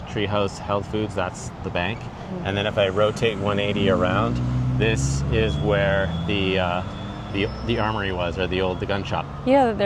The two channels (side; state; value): both; identical; correlation 1.00